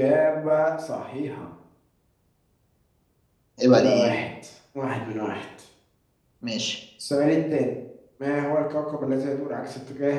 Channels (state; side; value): identical; both; correlation 1.00